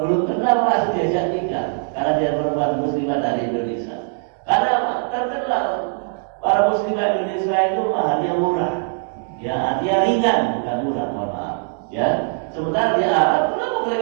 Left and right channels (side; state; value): left; silent; digital silence